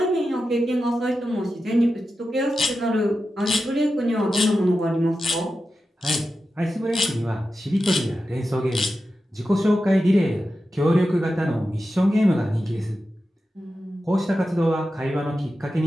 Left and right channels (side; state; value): both; normal; correlation 0.91